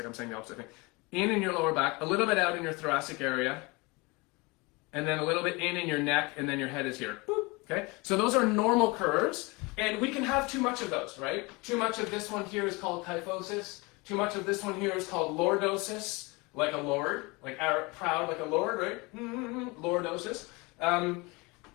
I'm saying the opposite thing. In your lower back, a little bit out in your thoracic area, and then a little bit in your neck, and then your head is here. Boop. Okay, so those are normal curves, and we can have too much of those, right? Too much of this one here is called kyphosis. Too much of this one here is called lordosis, like a lord, like proud like a lord, right? Lordosis.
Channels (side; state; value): right; quieter; 26.0 dB